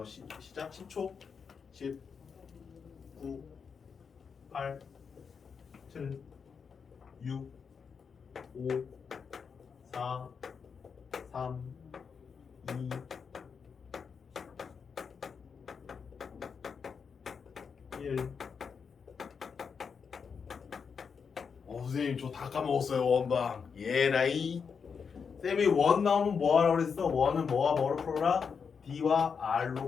시작! 10초. 10, 9, 8, 7, 6, 5, 4, 3, 2, 1. 선생님 저 다 까먹었어요. 원방. 예라이. 쌤이 원 나오면 뭐 하라고 그랬어? 원은 뭐와 뭐로 풀어라? D와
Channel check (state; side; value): quieter; right; 6.1 dB